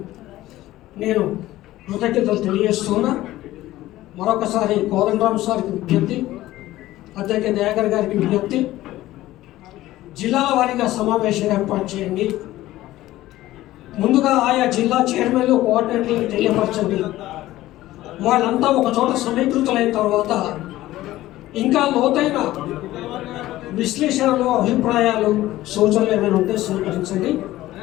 నేను కృతజ్ఞతలు తెలియజేస్తున్నా. మరొకసారి కోదండరామ్ సార్కి విజ్ఞప్తి, అధ్యక్ష దయాకర్ గారికి విజ్ఞప్తి, జిల్లాల వారీగా సమావేశం ఏర్పాటు చేయండి. ముందుగా ఆయా జిల్లా చైర్మన్లు, కోఆర్డినేటర్లకు తెలియపరచండి. వాళ్ళంతా ఒక చోట సమీకృతులైన తర్వాత ఇంకా లోతైన విశ్లేషణలు, అభిప్రాయాలు, సూచనలు ఏమైనా ఉంటే స్వీకరించండి.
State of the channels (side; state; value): right; quieter; 15.8 dB